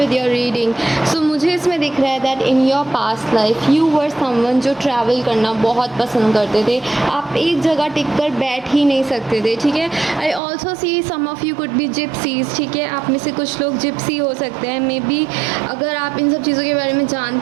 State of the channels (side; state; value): left; drops out; at 10.4 s